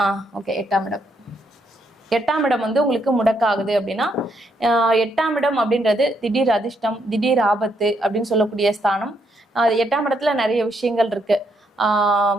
ஓகே, 8ஆம் இடம். 8ஆம் இடம் வந்து உங்களுக்கு முடக்காகுது அப்படின்னா 8ஆம் இடம் அப்படின்றது திடீர் அதிர்ஷ்டம், திடீர் ஆபத்து அப்படின்னு சொல்லக்கூடிய ஸ்தானம். 8ஆம் இடத்துல நிறைய விஷயங்கள் இருக்கு.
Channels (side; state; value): both; normal; correlation 0.75